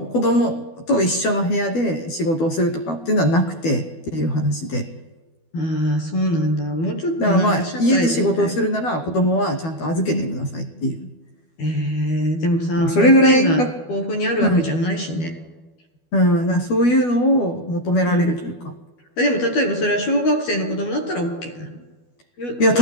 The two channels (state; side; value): late; right; 12 ms